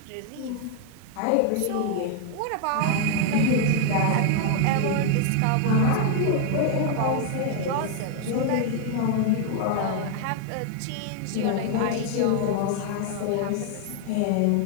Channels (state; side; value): different; both; correlation 0.00